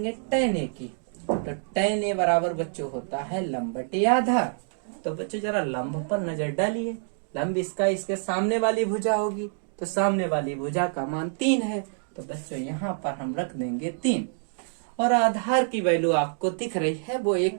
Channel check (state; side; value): silent; left; digital silence